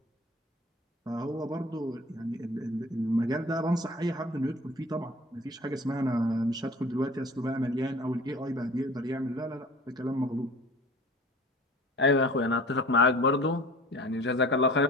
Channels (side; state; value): both; normal; correlation 0.44